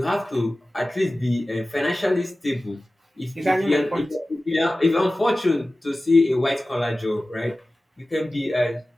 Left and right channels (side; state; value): both; normal; correlation 0.96